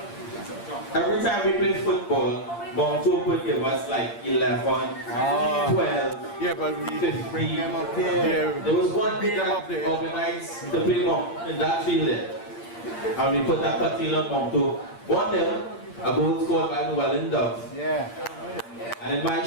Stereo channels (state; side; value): late; right; 8.7 ms